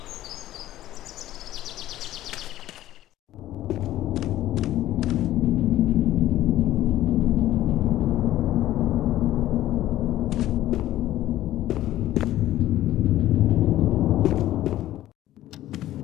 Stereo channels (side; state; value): right; quieter; 14.1 dB